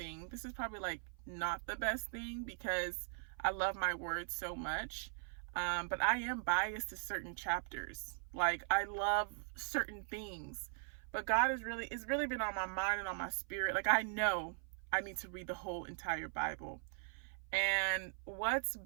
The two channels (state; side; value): silent; left; 51 dB below the other